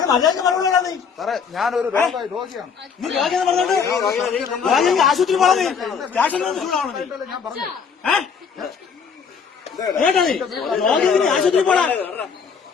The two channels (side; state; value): right; quieter; 6.2 dB